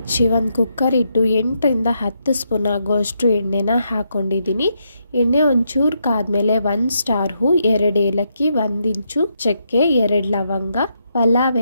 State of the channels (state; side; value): inverted; both; correlation -0.80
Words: 1 ಕುಕ್ಕರ್ ಇಟ್ಟು 8 ಇಂದ 10 ಸ್ಪೂನ್ ಆಗೋಷ್ಟು ಎಣ್ಣೆನ ಹಾಕ್ಕೊಂಡಿದ್ದೀನಿ. ಎಣ್ಣೆ ಒಂಚೂರು ಕಾದ್ಮೇಲೆ 1 ಸ್ಟಾರ್ ಹೂ, 2 ಏಲಕ್ಕಿ, 1 ಇಂಚು ಚಕ್ಕೆ, 2 ಲವಂಗ, ಪಲಾವ್